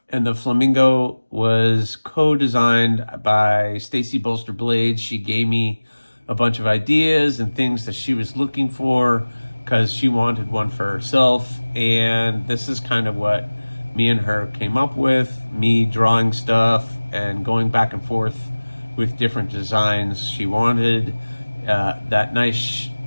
And the flamingo was co-designed by Stacy Bolster Blades. She gave me a bunch of ideas and things that she was looking for because she wanted one for herself. And this is kind of what me and her came up with, me drawing stuff and going back and forth with different designs she wanted. that nice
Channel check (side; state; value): both; inverted; correlation -1.00